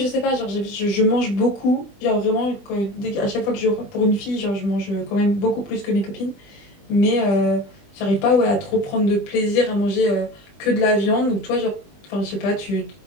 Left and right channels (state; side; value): late; right; 20 ms